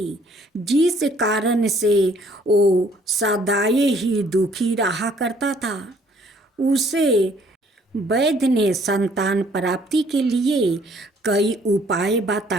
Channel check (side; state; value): both; normal; correlation 0.61